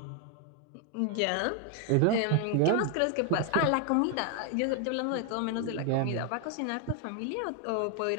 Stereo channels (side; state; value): both; different; correlation 0.01